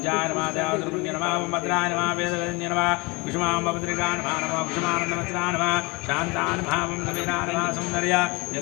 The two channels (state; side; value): quieter; right; 26.4 dB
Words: नमः देवद्रवण्य नमः भद्राय नमः वेदवेद्य नमः कुसुमाम्बभद्रिका नमः नमः कुसुमानन्दवस्त्रा नमः शान्ताय नमः कबीरा नमः सौन्दर्य